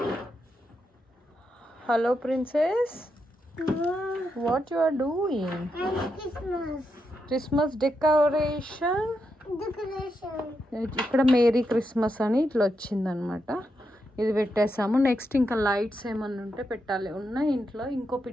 Hello princess, what you are doing? Christmas decoration. ఇక్కడ మేరీ క్రిస్మస్ అని ఇట్లా వచ్చిందనమాట. ఇది పెట్టేసాము. నెక్స్ట్ ఇంకా లైట్స్ ఏమన్నా ఉంటే పెట్టాలి. ఉన్న ఇంట్లో ఇంకో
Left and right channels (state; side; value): normal; both; correlation 0.84